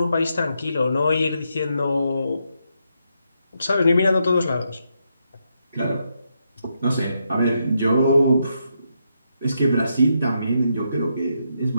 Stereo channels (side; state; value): both; inverted; correlation -0.81